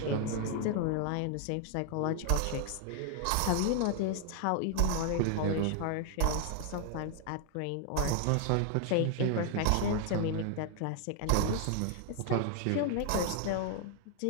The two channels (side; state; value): both; different; correlation 0.00